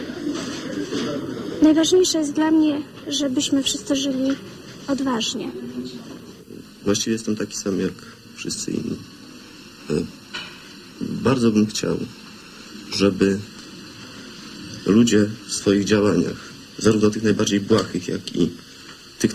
Najważniejsze jest dla mnie, żebyśmy wszyscy żyli odważnie. Właściwie jestem taki sam jak wszyscy inni. Bardzo bym chciał, żeby ludzie w swoich działaniach, zarówno tych najbardziej błahych, jak i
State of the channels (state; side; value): identical; both; correlation 1.00